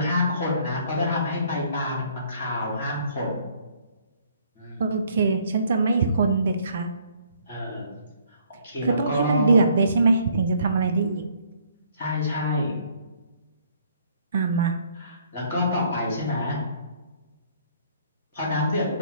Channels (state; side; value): inverted; both; correlation -0.62